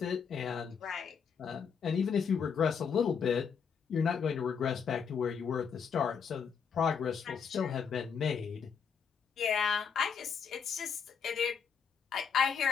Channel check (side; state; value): right; quieter; 6.6 dB